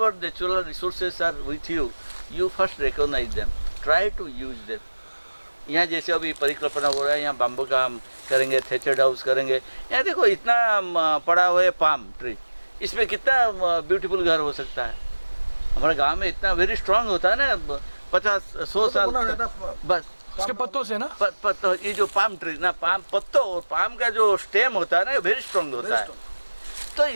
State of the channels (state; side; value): inverted; both; correlation -1.00